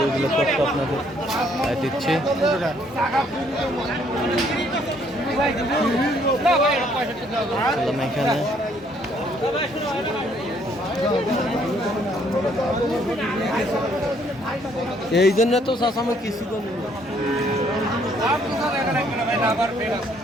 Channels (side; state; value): both; normal; correlation 0.66